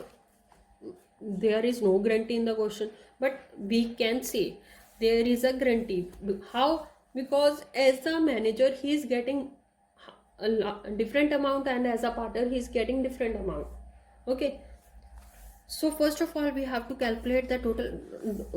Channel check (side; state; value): both; identical; correlation 1.00